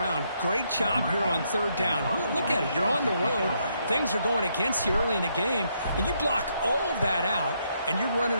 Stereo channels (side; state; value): both; inverted; correlation -0.75